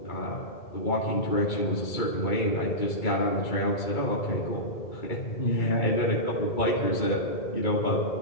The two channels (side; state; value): right; late; 2.3 ms